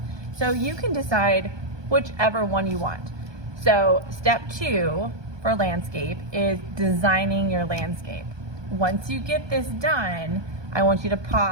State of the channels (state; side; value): late; left; 1.2 ms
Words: So you can decide whichever one you want. So step 2 for landscape is designing your landscape. Once you get this done, I want you to